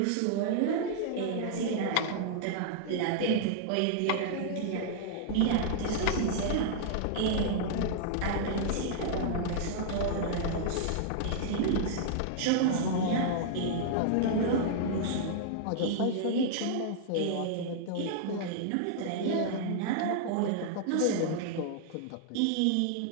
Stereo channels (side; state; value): both; different; correlation -0.01